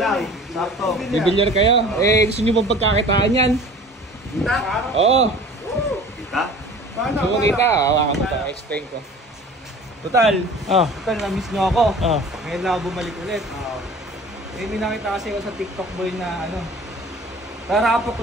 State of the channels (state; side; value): normal; both; correlation 0.44